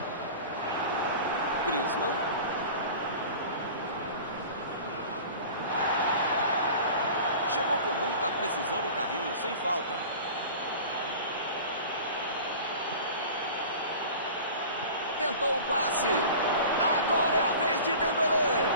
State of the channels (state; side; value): inverted; both; correlation -0.39